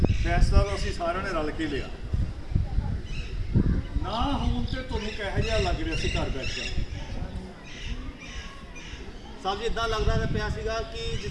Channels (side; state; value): both; identical; correlation 1.00